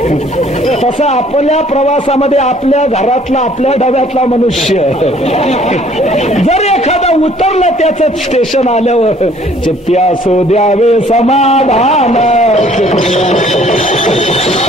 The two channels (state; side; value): normal; both; correlation 0.58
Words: तसं आपल्या प्रवासामध्ये आपल्या घरातला, आपल्या डब्यातला मनुष्य जर एखादा उतरला त्याचं स्टेशन आल्यावर, चित्त्या सो द्यावे समाधान,